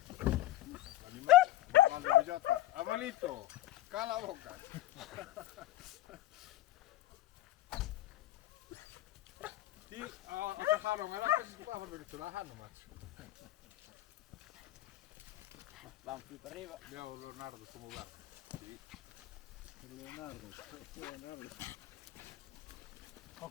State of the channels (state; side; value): quieter; right; 15.1 dB